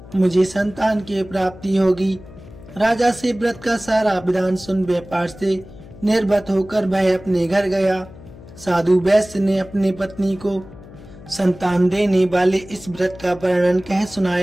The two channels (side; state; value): left; noise; hum, 19 dB below the sound